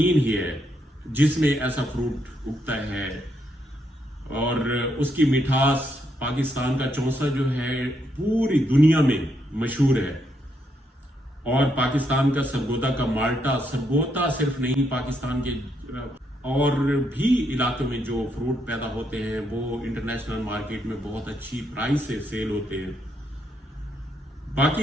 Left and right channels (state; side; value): normal; both; correlation 0.77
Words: ही है जिसमें ऐसा फ्रूट उगता है और उसकी मिठास पाकिस्तान का चौसा जो है पूरी दुनिया में मशहूर है। और पाकिस्तान का सरगोदा का माल्टा, सरगोदा सिर्फ नहीं, पाकिस्तान के और भी इलाकों में जो फ्रूट पैदा होते हैं वो इंटरनेशनल मार्केट में बहुत अच्छी प्राइस से सेल होते हैं।